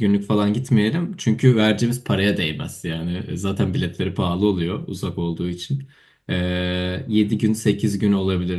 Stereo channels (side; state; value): both; identical; correlation 1.00